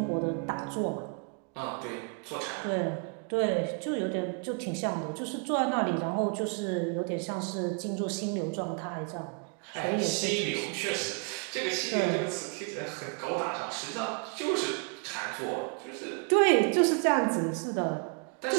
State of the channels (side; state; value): left; quieter; 37.5 dB